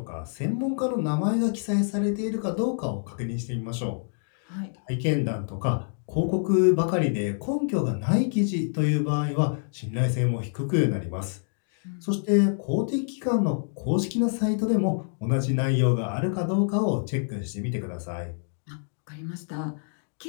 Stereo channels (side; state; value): right; silent; digital silence